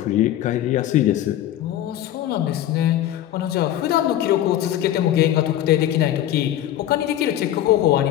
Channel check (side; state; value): right; quieter; 12.4 dB